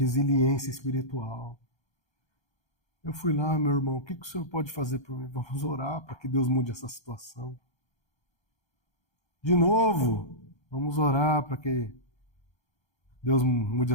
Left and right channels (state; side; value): late; right; 1.3 ms